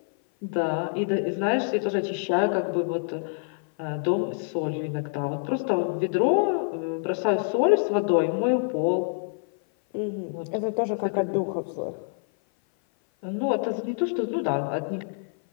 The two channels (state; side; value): silent; right; 56 dB below the other